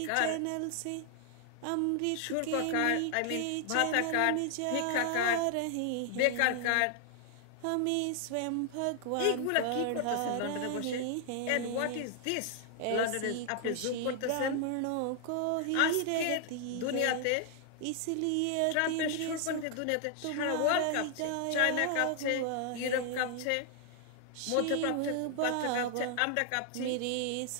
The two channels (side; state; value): both; different; correlation 0.00